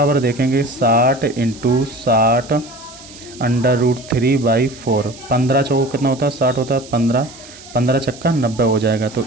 देखेंगे 60 इंटू 60 अंडर रूट 3 बाई 4, 15 चौको कितना होता है 60 होता है, 15 15 छक्का 90 हो जाएगा। तो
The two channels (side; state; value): right; noise; hiss, 19 dB below the sound